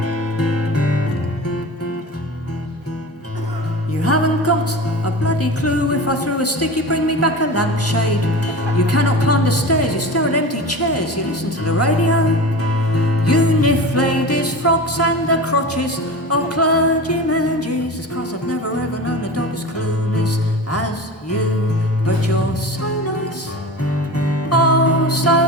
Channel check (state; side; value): normal; both; correlation 0.31